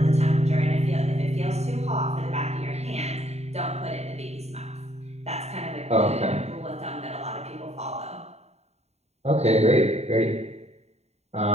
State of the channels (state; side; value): late; left; 0.31 ms